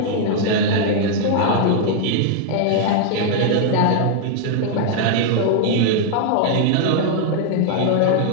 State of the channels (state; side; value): different; both; correlation 0.00